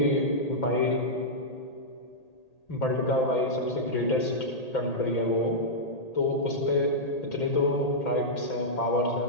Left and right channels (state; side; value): late; right; 1.8 ms